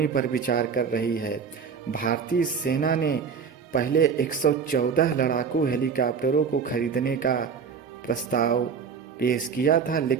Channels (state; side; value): quieter; left; 6.2 dB